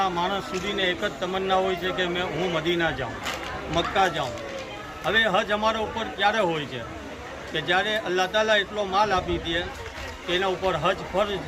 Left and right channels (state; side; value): identical; both; correlation 1.00